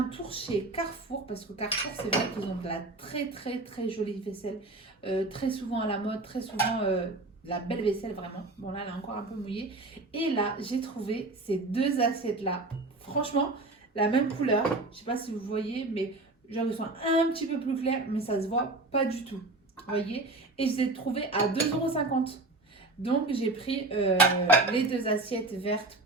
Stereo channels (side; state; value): left; quieter; 3.0 dB